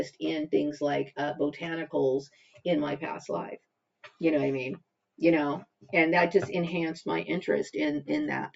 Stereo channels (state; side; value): identical; both; correlation 1.00